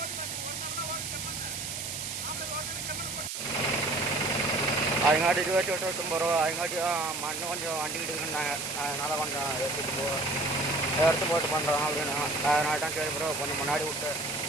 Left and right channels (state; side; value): noise; right; hiss, 5 dB below the sound